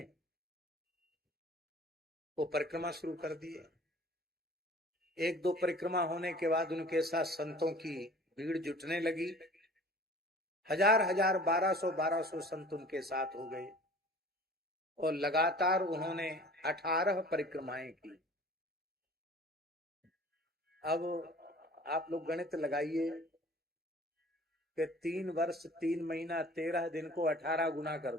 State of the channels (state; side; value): normal; both; correlation 0.46